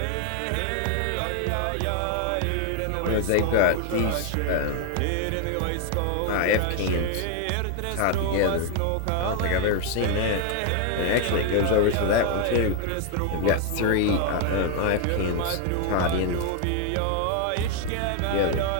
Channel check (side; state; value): both; different; correlation 0.00